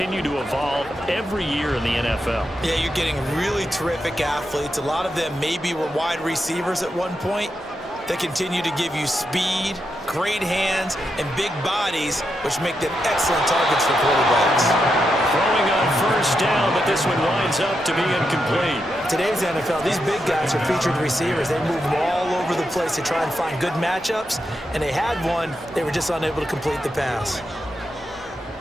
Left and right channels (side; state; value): both; normal; correlation 0.85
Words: to evolve every year in the NFL. Yeah, you're getting really terrific athletes. A lot of them maybe were wide receivers at one point. They continue to give you speed, great hands, and big bodies, which make them excellent targets for quarterbacks. Throwing on 1st down, but this one winds up to be incomplete. Today's NFL, these big guys are featured receivers. They move all over the place to try and find good matchups, and they had one. They were just unable to complete the pass.